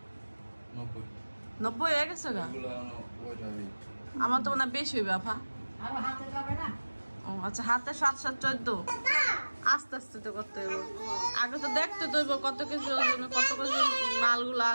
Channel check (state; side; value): inverted; both; correlation -1.00